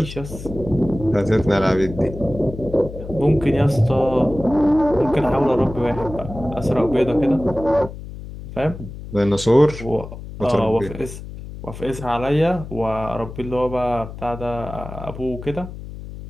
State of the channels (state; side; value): noise; left; hum, 12 dB below the sound